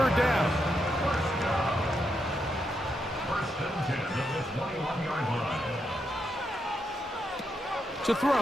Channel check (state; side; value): normal; both; correlation 0.82